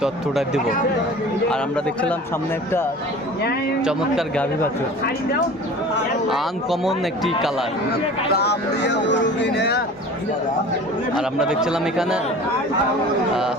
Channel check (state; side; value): normal; both; correlation 0.41